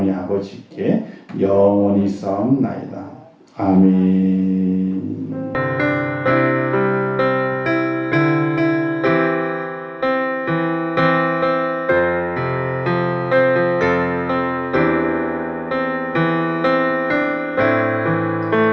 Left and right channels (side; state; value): both; identical; correlation 1.00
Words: 아버지께 영원히 싸움나이다. 아멘.